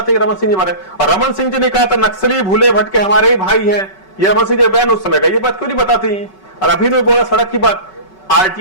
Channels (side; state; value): right; late; 5.3 ms